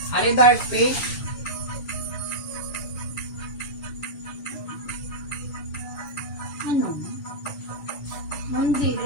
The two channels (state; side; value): late; right; 7.0 ms